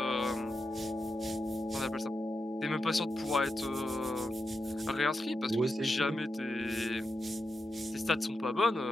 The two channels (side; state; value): both; normal; correlation 0.88